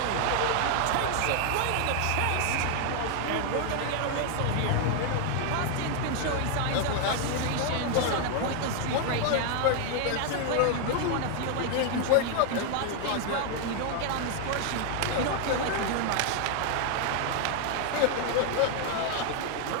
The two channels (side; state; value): both; different; correlation 0.00